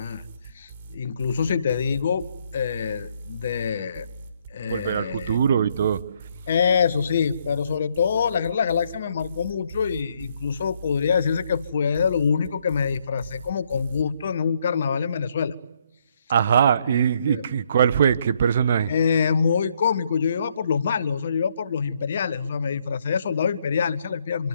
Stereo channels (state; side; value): inverted; both; correlation -0.71